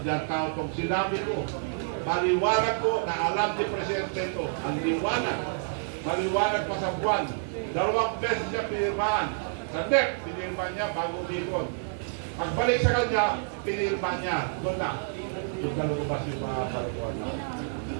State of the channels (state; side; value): silent; left; digital silence